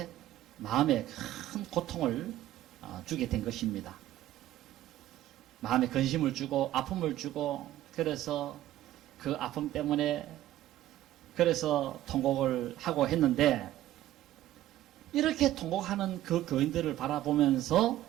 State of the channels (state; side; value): quieter; left; 13.9 dB